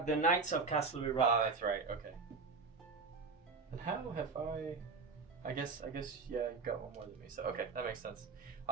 the Knights of Casterly Rock. Ah, that's right. Okay. And how have I guess, yeah, you've got one more than me. So, okay, that makes sense.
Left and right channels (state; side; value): quieter; left; 4.6 dB